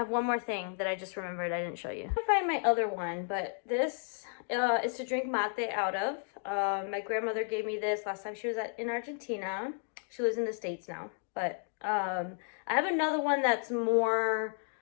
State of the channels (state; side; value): silent; right; 56 dB below the other